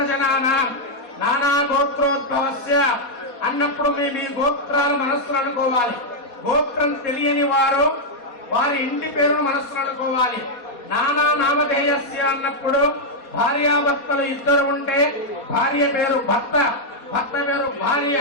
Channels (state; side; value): late; right; 4.2 ms